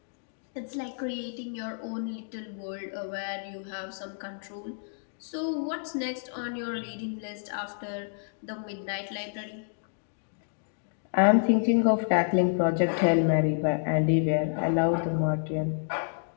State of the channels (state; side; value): silent; right; digital silence